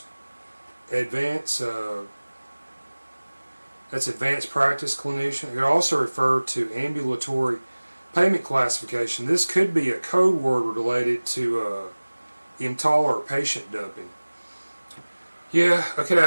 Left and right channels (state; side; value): inverted; both; correlation -1.00